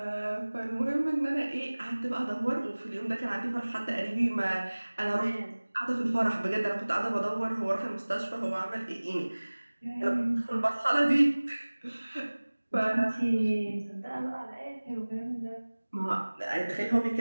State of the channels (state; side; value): inverted; both; correlation -1.00